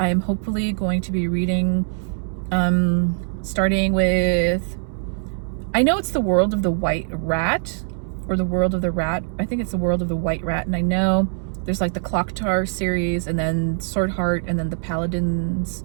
am hopefully going to be reading, starting with, I know it's The World of the White Rat, or The World of the Rat. I think it's The World of the White Rat, and I know there's like the Clocktar series, and then Swordheart, and then the Paladins,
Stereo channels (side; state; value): left; silent; 64 dB below the other